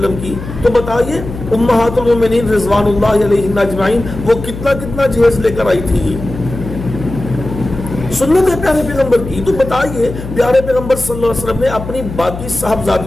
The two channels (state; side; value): noise; left; hum, 10 dB below the sound